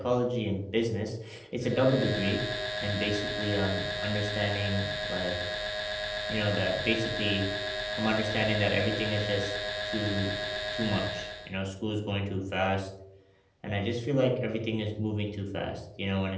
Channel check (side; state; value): both; identical; correlation 1.00